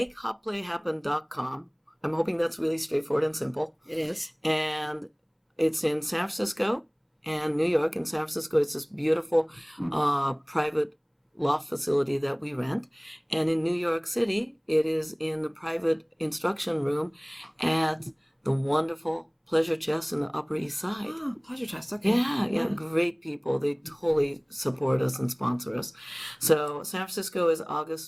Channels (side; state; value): both; identical; correlation 1.00